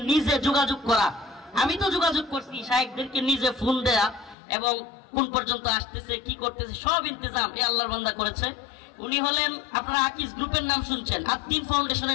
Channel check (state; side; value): drops out; right; at 4.4 s